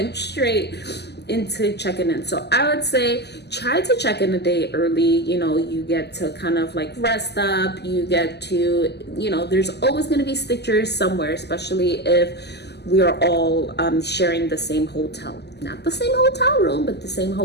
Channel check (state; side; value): late; right; 0.49 ms